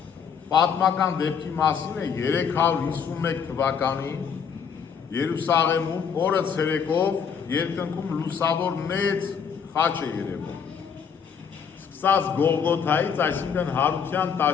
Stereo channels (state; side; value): quieter; right; 6.9 dB